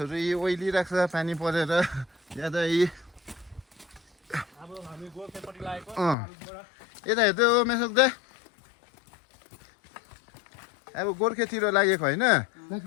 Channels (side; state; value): right; drops out; at 6.2 s